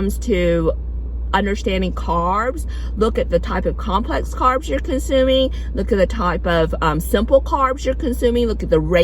to understanding carbs, look at the type of complex carbs you're consuming, look at the type of simple carbs you're consuming, look at the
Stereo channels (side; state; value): both; identical; correlation 1.00